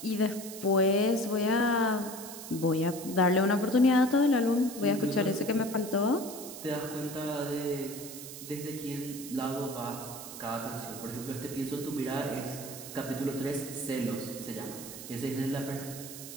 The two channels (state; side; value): noise; right; hiss, 11 dB below the sound